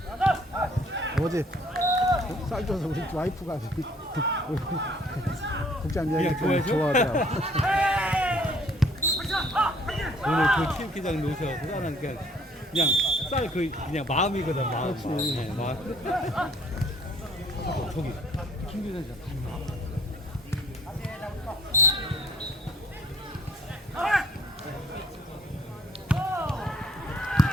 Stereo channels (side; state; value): both; normal; correlation 0.58